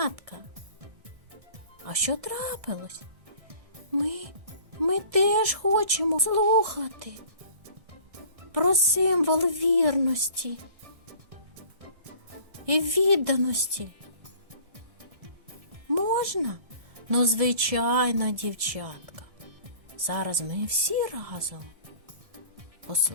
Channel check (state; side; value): late; left; 1.6 ms